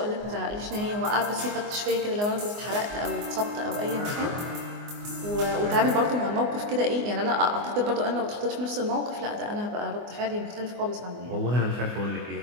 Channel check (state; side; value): late; left; 24 ms